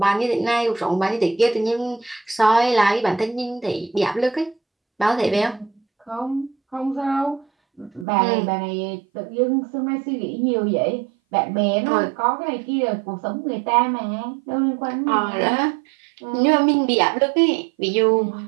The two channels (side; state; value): left; drops out; at 8.1 s